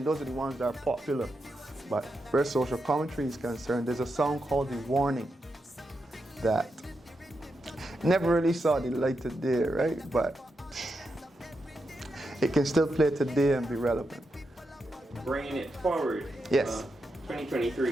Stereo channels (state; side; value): normal; both; correlation 0.86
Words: those are the ones that are popular. But where social commentary is concerned, there's a song called The Warning that never really saw the light of day, right? But it can still play today and be relevant. Bringing it forward. Yes.